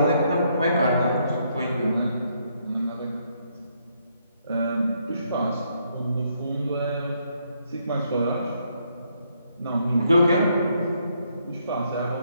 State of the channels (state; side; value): inverted; both; correlation -0.74